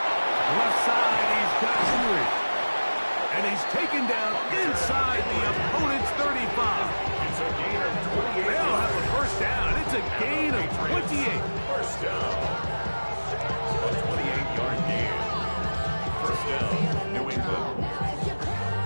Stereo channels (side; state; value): both; inverted; correlation -1.00